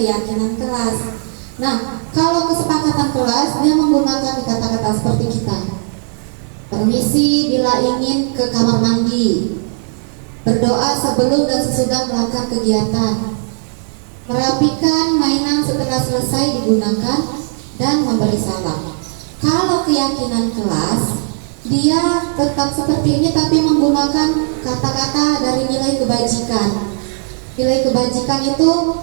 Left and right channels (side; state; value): left; silent; 63 dB below the other